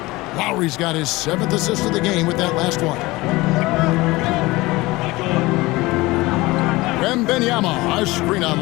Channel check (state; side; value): quieter; right; 20.8 dB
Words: Lowry's got his 7th assist of the game with that last one. Wembanyama, a screen on